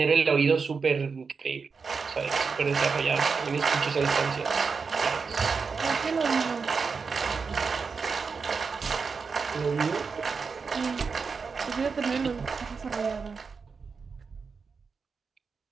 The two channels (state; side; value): quieter; left; 5.1 dB